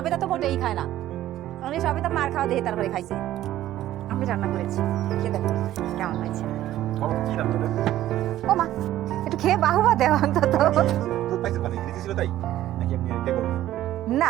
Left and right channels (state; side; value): quieter; left; 13.6 dB